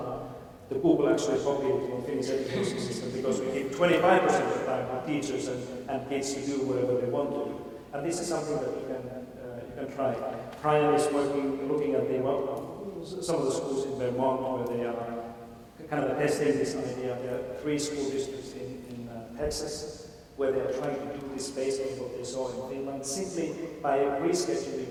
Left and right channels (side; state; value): both; identical; correlation 1.00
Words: The Google actually copied it from the Finnish education system because we give 25% of the time for teachers and kids to do whatever they want to do. And this is something that you can try. Brian is looking at some of the schools in Vermont where they are kind of testing this idea. There are 3 school districts in Texas where they are trying to do this based on what they saw in Finland, simply by